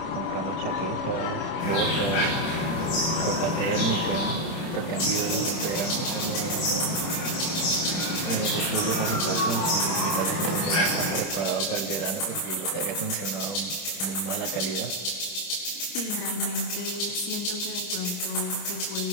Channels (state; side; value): late; right; 30 ms